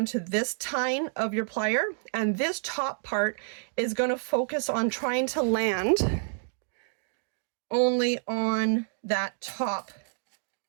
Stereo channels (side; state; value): left; silent; digital silence